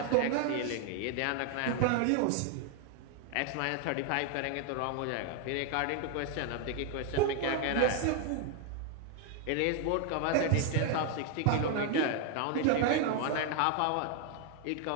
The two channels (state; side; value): different; both; correlation 0.00